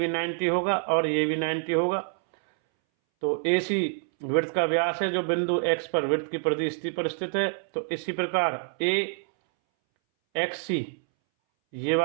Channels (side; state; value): left; silent; 60 dB below the other